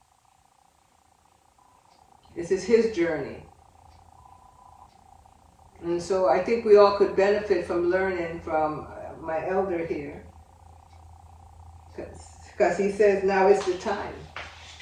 This is his journey. And so I think we all could benefit from learning from my elder here. Because he says now is the time.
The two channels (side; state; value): both; identical; correlation 1.00